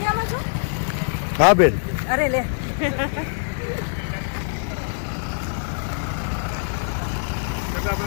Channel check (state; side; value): silent; right; digital silence